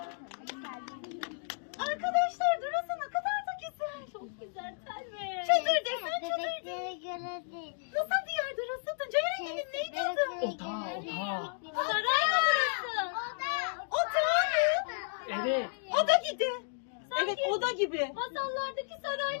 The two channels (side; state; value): right; silent; digital silence